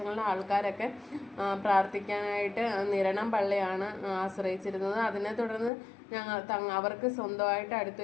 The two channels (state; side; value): drops out; right; at 5.7 s